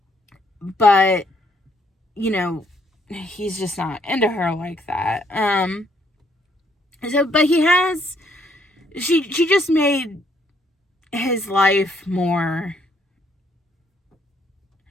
But, you know, he's just not into her like that. But she just made his life more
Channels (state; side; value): normal; both; correlation 0.69